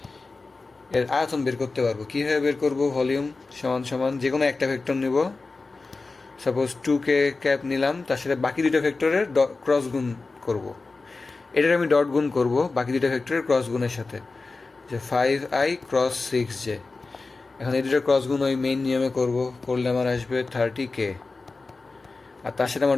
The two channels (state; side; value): quieter; right; 3.8 dB